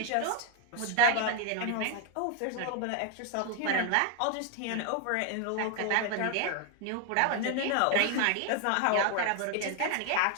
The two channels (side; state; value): both; different; correlation 0.00